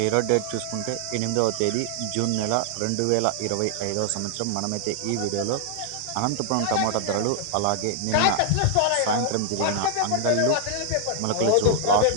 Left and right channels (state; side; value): different; both; correlation 0.00